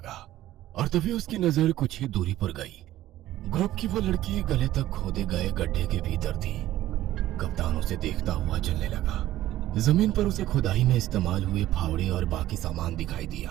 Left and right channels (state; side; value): quieter; left; 14.4 dB